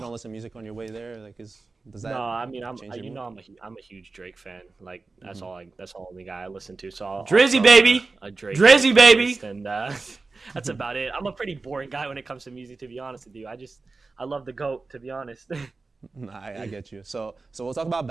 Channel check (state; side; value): quieter; left; 3.8 dB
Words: listen to music on your way there? Like, does that? No, I mean I'm change your mood? I'm a huge Drake fan. Like that's the only guy I listen to. So I'll Drizzy, throw baby! a Drake Drizzy, baby! playlist, and that's about it. I'm a pretty boring guy when it comes to music, to be honest with you. I love the GOAT, to be honest. Nah, I get you. So we'll talk about